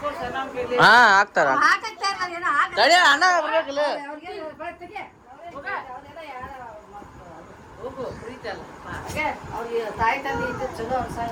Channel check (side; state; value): both; identical; correlation 1.00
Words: ಹಾ ಹಾಕ್ತಾರ ತಡಿ ಅಣ್ಣ ಬರ್ಬೇಕಲ್ಲ ಅವ್ರಿಗೆ ತಾಯಿ ತಂದೆ ಇದ್ದು ಚಲೋ